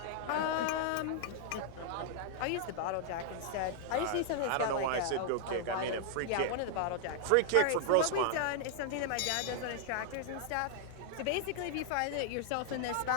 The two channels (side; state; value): both; different; correlation 0.00